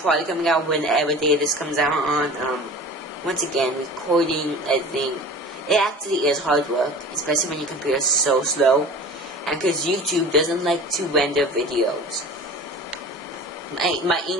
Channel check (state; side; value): normal; both; correlation 0.39